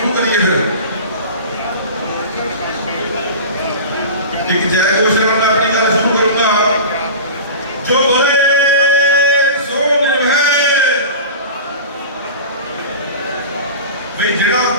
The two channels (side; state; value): both; inverted; correlation -0.33